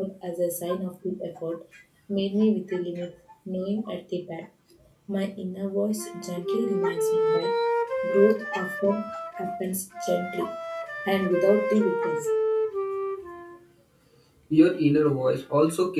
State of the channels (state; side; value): identical; both; correlation 1.00